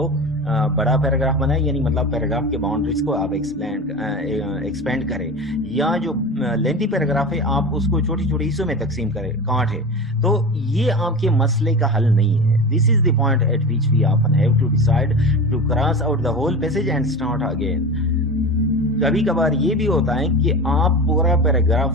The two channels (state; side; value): normal; both; correlation 0.29